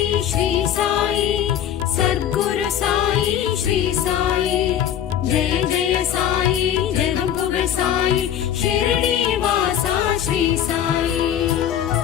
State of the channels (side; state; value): right; quieter; 10.1 dB